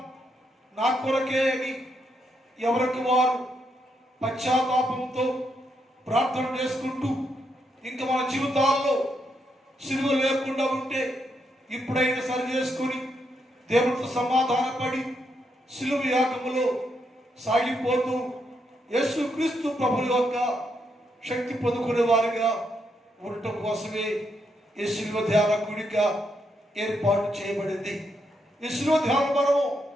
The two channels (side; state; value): both; normal; correlation 0.79